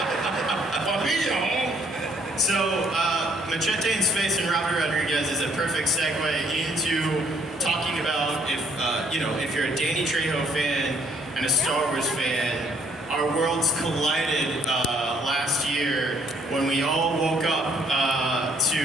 So, Machete in Space and Robert Rodriguez is a perfect segue into talking about if you're a Danny Trejo fan and a Star Wars fan, our worlds collided last year when we all woke up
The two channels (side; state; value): both; normal; correlation 0.64